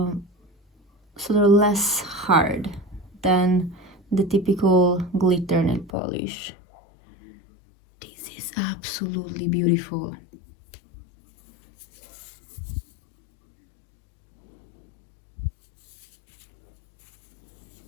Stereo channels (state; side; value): drops out; right; at 5.9 s